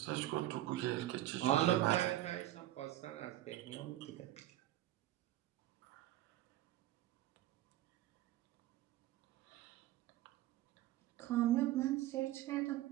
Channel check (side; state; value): left; quieter; 14.6 dB